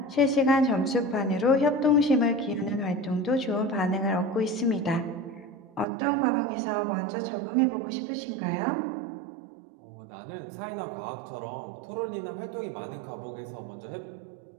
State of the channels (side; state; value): left; drops out; at 5.9 s